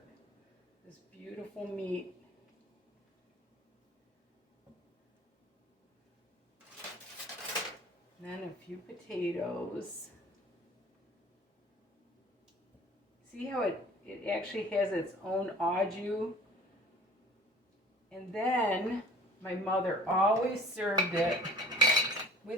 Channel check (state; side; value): normal; both; correlation 0.47